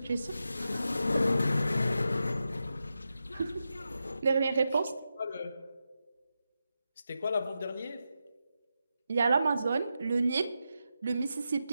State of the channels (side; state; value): both; inverted; correlation -0.88